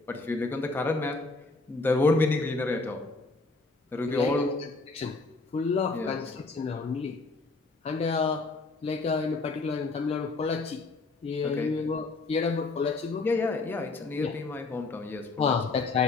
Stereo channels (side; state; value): right; quieter; 3.6 dB